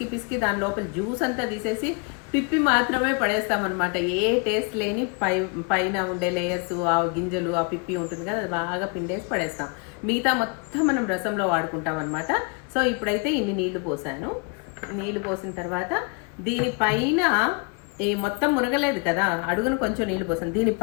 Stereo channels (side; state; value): right; quieter; 34.0 dB